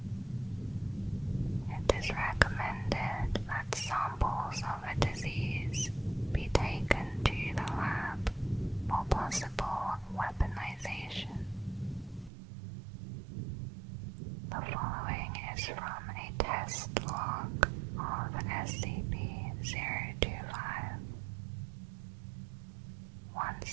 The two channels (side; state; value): left; drops out; at 12.3 s